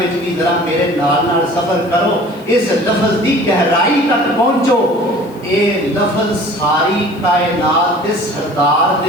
بھی ذرا میرے نال نال سفر کرو اس لفظ دی گہرائی تک پہنچو اے لفظ ساری کائنات دے سردار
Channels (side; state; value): left; noise; hiss, 28 dB below the sound